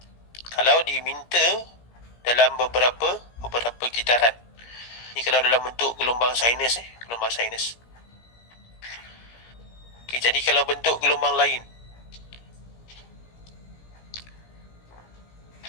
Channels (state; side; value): late; right; 17 ms